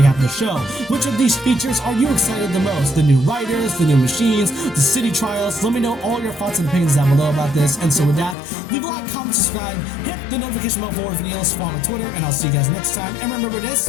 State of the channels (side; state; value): right; drops out; at 8.3 s